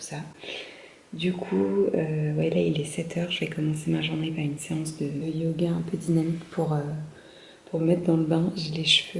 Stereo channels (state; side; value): identical; both; correlation 1.00